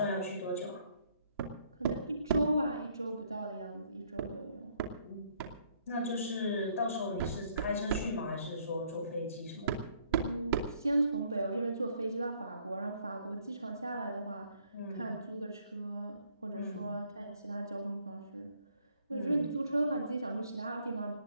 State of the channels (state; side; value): inverted; both; correlation -0.65